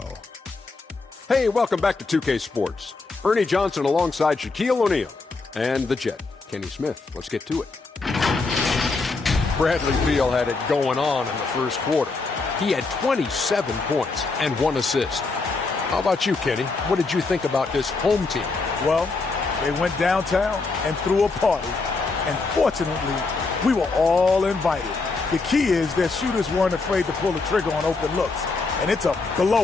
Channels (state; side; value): quieter; right; 3.9 dB